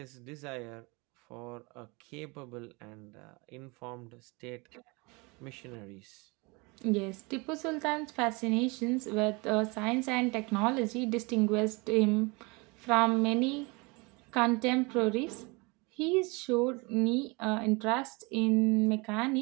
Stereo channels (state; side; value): quieter; left; 27.3 dB